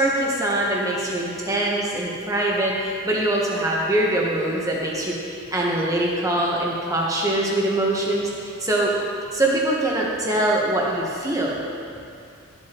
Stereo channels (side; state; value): both; normal; correlation 0.36